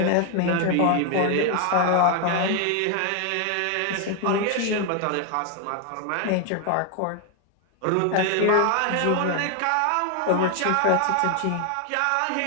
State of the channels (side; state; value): both; different; correlation 0.01